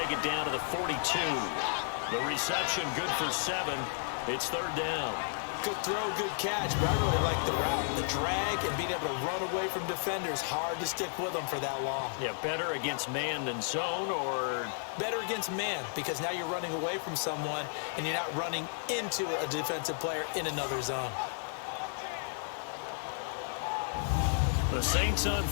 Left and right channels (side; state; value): right; silent; 56 dB below the other